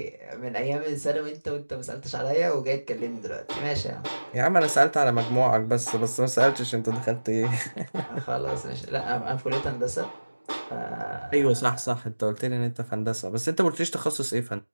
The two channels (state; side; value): inverted; both; correlation -1.00